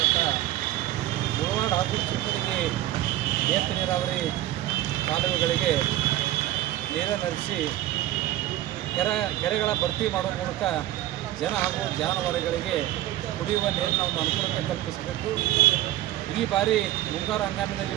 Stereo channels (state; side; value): quieter; left; 14.4 dB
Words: ಮುಳವಾಡ ಹಾಗೂ ಚಿಕ್ಕಡಿಗೆ ಏತ ನೀರಾವರಿ ಕಾಲುವೆಗಳಿಗೆ ನೀರನ್ನು ಹರಿಸಿ ಕೆರೆಗಳ ಭರ್ತಿ ಮಾಡುವ ಮೂಲಕ ಜನ ಹಾಗೂ ಜಾನುವಾರುಗಳಿಗೆ ಕುಡಿಯುವ ನೀರಿನ ಒಂದು ಅನುಕೂಲತೆ ಕಲ್ಪಿಸಬೇಕು. ಈ ಬಾರಿ ಮುಂಗಾರು ಹಂಗಾಮಿನಲ್ಲಿ